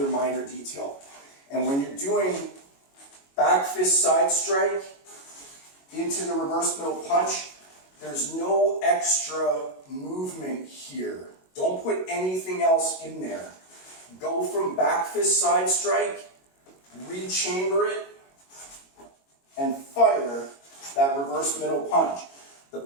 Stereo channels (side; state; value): right; late; 22 ms